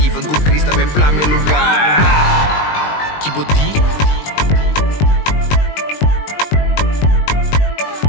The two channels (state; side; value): late; right; 20 ms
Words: com Krista, bem plá meu lugar. Kibodi.